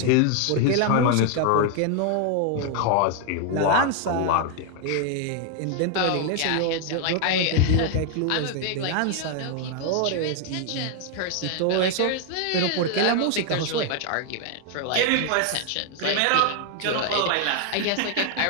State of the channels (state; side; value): different; both; correlation 0.00